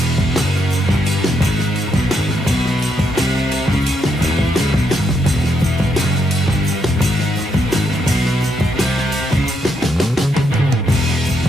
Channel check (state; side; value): normal; both; correlation 0.78